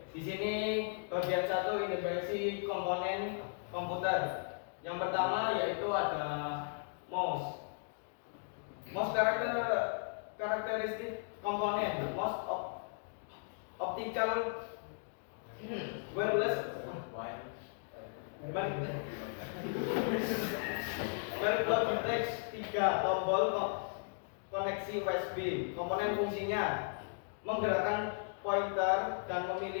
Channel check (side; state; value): right; silent; digital silence